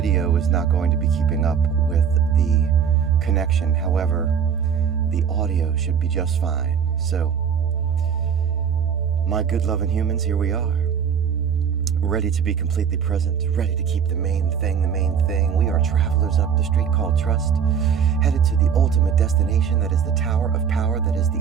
is not going to be keeping up with the connection. However, the audio should be just fine. So, my good loving humans, here we are. Ready to be completely present, ready to keep the main thing the main thing. We are travelers up the street called trust, headed to the ultimate destination that is the tower of power, that is the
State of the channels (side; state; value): left; quieter; 7.4 dB